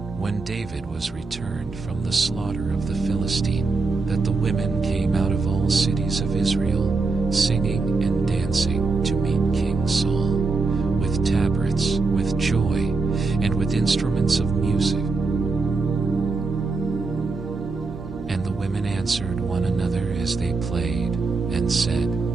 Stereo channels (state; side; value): quieter; left; 3.9 dB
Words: when David was returned from the slaughter of the Philistine, that the women came out of all cities of Israel, singing and dancing to meet King Saul, with tabrets, with joy, and with instruments of music. And the women answered one another as they played, and said,